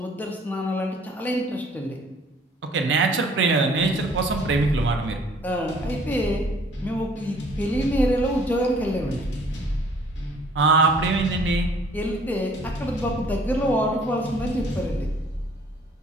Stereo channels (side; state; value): both; normal; correlation 0.57